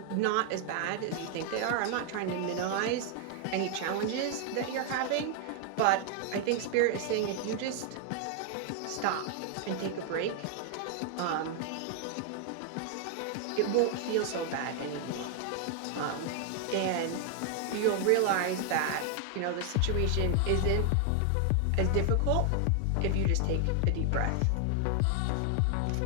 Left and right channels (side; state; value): both; different; correlation 0.00